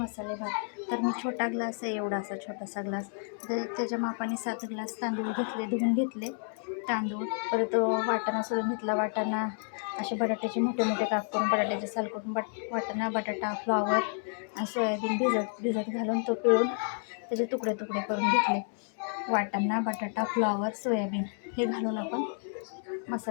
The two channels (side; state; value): right; silent; 57 dB below the other